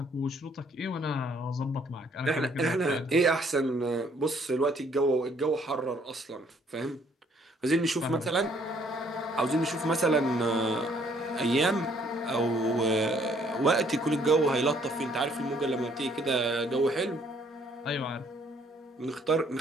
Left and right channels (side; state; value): both; normal; correlation 0.64